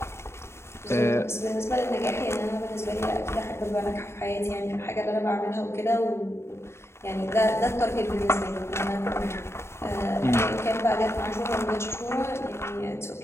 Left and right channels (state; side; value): late; right; 0.13 ms